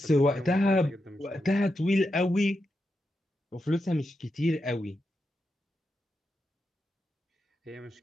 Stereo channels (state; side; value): normal; both; correlation 0.86